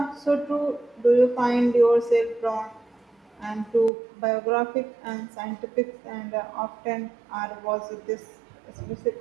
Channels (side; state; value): left; drops out; at 3.9 s